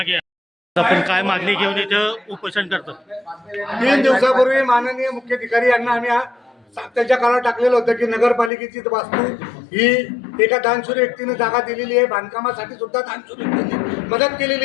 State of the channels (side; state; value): right; drops out; at 8.5 s